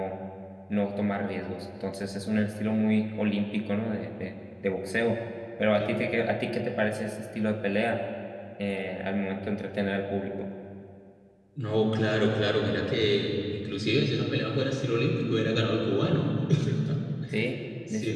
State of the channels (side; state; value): both; identical; correlation 1.00